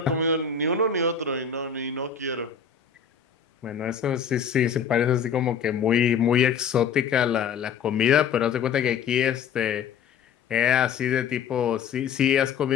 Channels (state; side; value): quieter; right; 7.0 dB